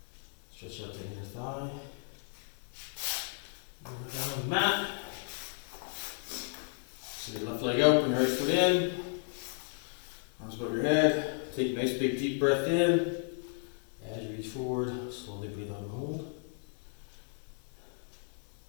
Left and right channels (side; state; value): right; silent; digital silence